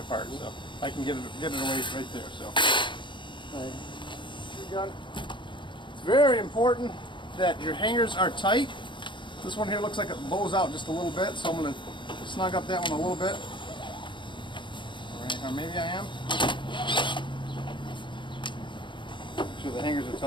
So I can get it away right there. So, gun. It's very important that your hangers are tight. This one here looks like it bows out just a little bit, so I'm going to snug up that one a little bit. Or maybe I am. Make sure the hangers are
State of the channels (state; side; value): late; right; 0.23 ms